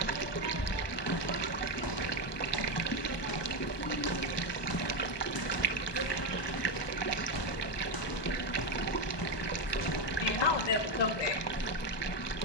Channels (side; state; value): right; late; 1.2 ms